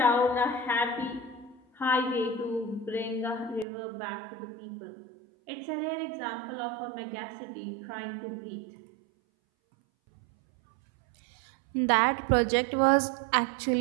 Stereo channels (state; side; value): drops out; left; at 3.7 s